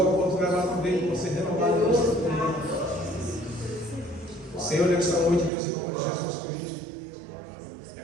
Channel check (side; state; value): left; drops out; at 5.5 s